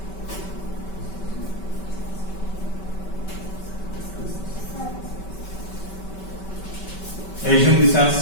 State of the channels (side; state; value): right; late; 5.2 ms